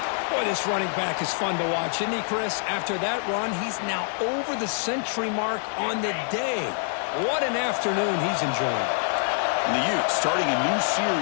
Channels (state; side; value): silent; right; 61 dB below the other